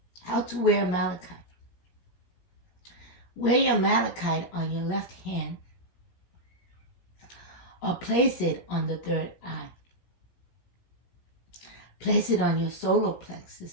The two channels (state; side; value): late; right; 17 ms